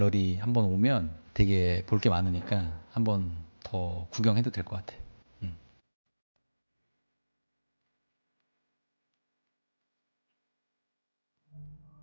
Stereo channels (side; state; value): both; inverted; correlation -1.00